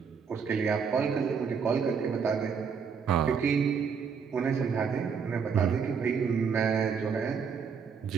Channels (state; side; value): quieter; left; 6.2 dB